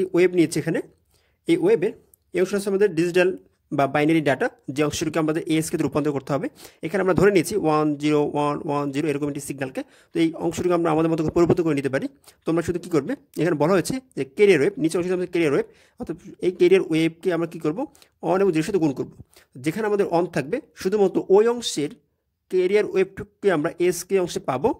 ওয়েব নিয়েছি, এখানে এই ওয়েবের এই অংশ হচ্ছে আমাদের ডিজিটাল বা বাইনারি ডাটা, যে অংশটিকে আমাদের ASKতে রূপান্তর করতে হবে। এখানে আমরা ধরে নিয়েছি 10110 এরকম একটি সিগন্যালকে। তো এই অংশটিকে আমরা আমাদের মতো পরিবর্তন করে নিতে পারি। তোমরা শুধু কী করবে, এখানে বলা হয়েছে যে ক্যারিয়ার ওয়েব, নিচে অংশটি আমাদের ক্যারিয়ার ওয়েব, অর্থাৎ এই ক্যারিয়ার ওয়েবকে আমরা কী করবো, অন এবং 0 সাথে গুণ করবো। যেখানে আমাদের অন থাকবে শুধুমাত্র ওই অংশের ক্যারিয়ার ওয়েবটুকুকে আমরা ASK অংশে পাবো,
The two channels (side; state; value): both; identical; correlation 1.00